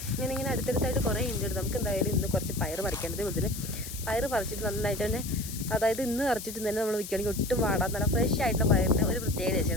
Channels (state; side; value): noise; left; hiss, 10 dB below the sound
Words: ഇങ്ങനെ അടുത്തടുത്തായിട്ട് കുറേ ഉണ്ട്. നമുക്ക് എന്തായാലും ഇന്ന് കുറച്ച് പയർ പറിക്കേണ്ടത്. അതുപോലെ പയർ പറിച്ചിട്ട് നന്നായിട്ട് തന്നെ, അതായത് ഇന്ന് പറിച്ചിട്ട് തന്നെ നമ്മൾ വിൽക്കുകയാണെങ്കിൽ ഒട്ടും വാടാൻ നല്ല ഫ്രഷ് ആയിട്ടുള്ള പയറിന് ഒരു പ്രത്യേകത